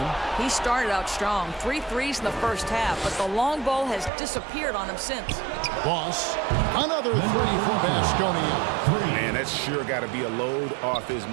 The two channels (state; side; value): drops out; left; at 4.1 s